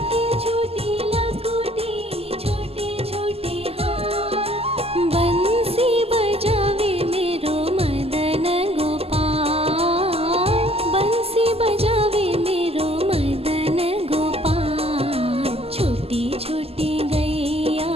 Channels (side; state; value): left; late; 0.29 ms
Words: छोटी लकुटी छोटे छोटे हाथ। बंसी बजावे मेरो मदन गोपाल, बंसी बजावे मेरो मदन गोपाल। छोटी छोटी गैया